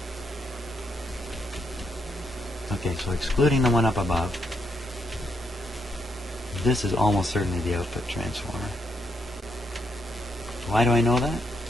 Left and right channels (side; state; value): both; normal; correlation 0.78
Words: Okay, so excluding the one up above, this is almost certainly the output transformer. Why do I know that?